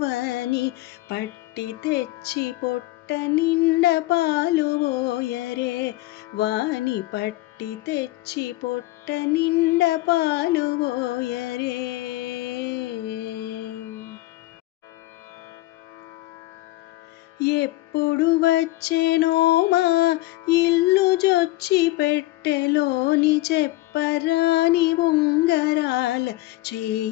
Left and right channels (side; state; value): right; quieter; 18.4 dB